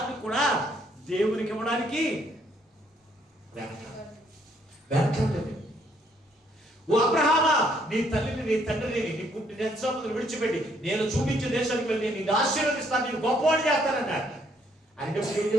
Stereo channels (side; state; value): both; normal; correlation 0.68